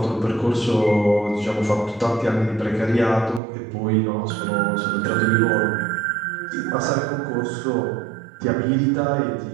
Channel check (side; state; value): left; drops out; at 3.4 s